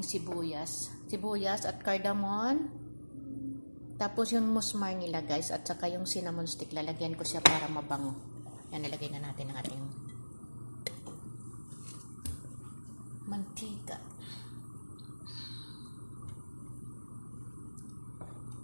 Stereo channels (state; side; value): inverted; both; correlation -1.00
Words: sibuyas at cardamom. Tapos yung musmar nila guys at saka yung cinnamon stick, lalagyan ko siya para mabango. Yan, nilagay na natin ang ating mantika.